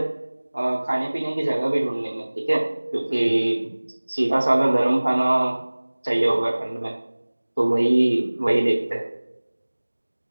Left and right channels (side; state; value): both; inverted; correlation -1.00